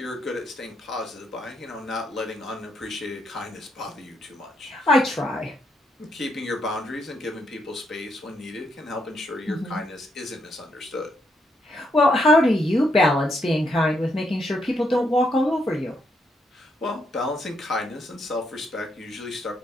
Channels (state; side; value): normal; both; correlation 0.77